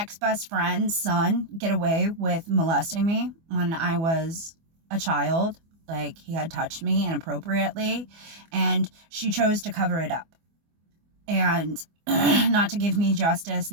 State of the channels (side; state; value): left; late; 24 ms